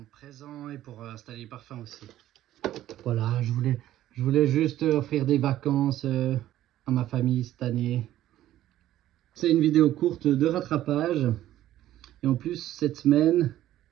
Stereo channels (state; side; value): quieter; left; 13.4 dB